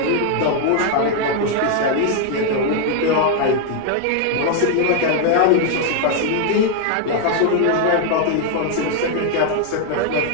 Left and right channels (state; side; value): different; both; correlation 0.00